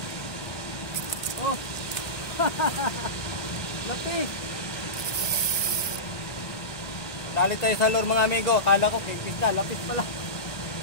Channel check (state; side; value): late; right; 1.9 ms